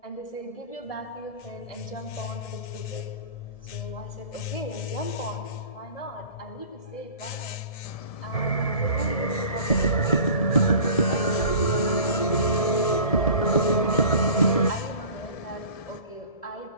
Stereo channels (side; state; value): right; late; 1.7 ms